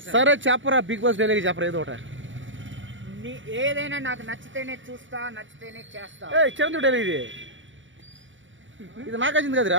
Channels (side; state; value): left; late; 0.56 ms